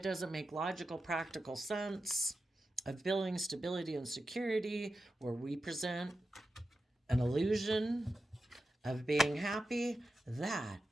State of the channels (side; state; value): both; normal; correlation 0.91